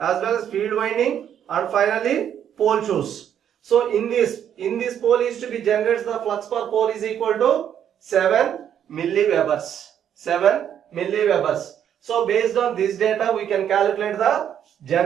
well as field winding and finally pole shoes. So in this pole is to be generated, the flux per pole is equal to 7 milliwebers. So based on this data we can calculate the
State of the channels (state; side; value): quieter; left; 9.4 dB